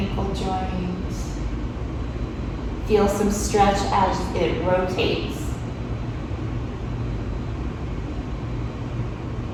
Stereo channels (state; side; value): identical; both; correlation 1.00